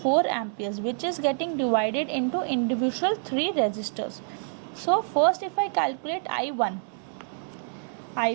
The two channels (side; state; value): left; silent; digital silence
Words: amperes, which is getting divided into individual 3 resistors. So first if I calculate I1